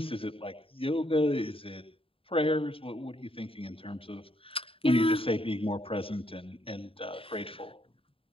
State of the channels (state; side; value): late; right; 0.27 ms